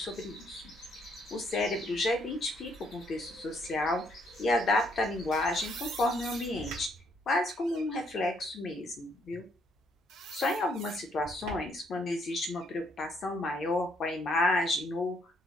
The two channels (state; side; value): normal; both; correlation 0.70